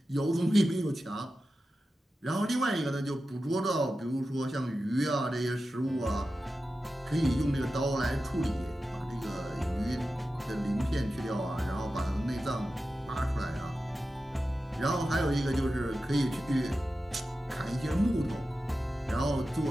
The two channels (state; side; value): normal; both; correlation 0.92